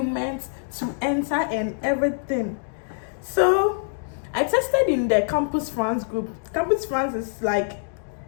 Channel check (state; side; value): silent; right; digital silence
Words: to enter and everything. So I tested in the Campus France group. Campus France is like